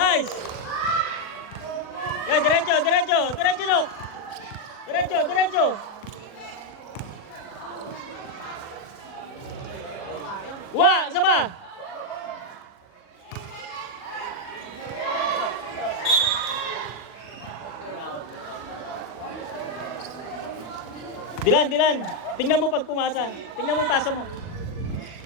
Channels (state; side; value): late; right; 40 ms